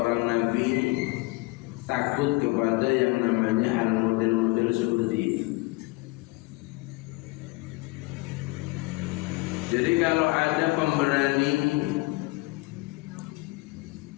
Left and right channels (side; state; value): right; quieter; 22.8 dB